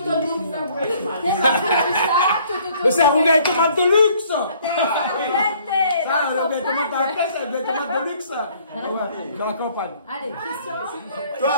Mais c'est un rougail tomate de luxe. Ça, le rougail tomate à la caisse, c'est un rougail tomate de luxe. Ouais, dans la campagne. Allez, Christian. Toi,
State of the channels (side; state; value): both; inverted; correlation -0.59